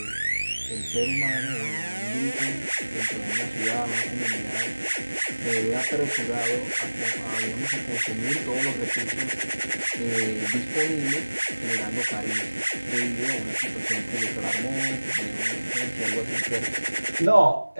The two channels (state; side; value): inverted; both; correlation -1.00